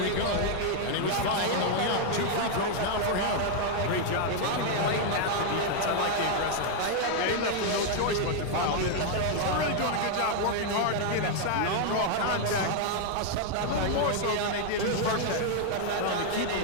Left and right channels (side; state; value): both; different; correlation 0.00